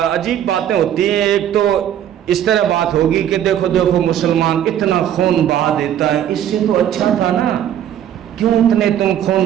عجیب باتیں ہوتی ہیں. ایک تو اس طرح بات ہوگی کہ دیکھو دیکھو مسلمان اتنا خون بہا دیتا ہے، اس سے تو اچھا تھا نا، کیوں اتنے تم خون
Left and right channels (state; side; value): quieter; left; 10.5 dB